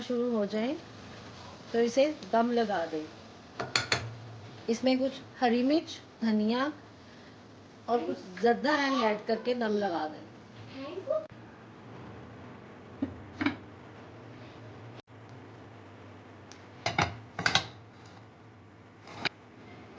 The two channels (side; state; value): both; identical; correlation 1.00